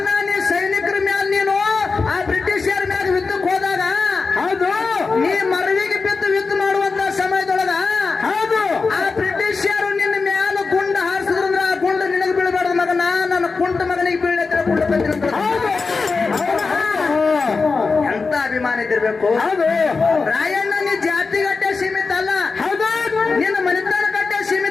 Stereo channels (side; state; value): right; quieter; 4.4 dB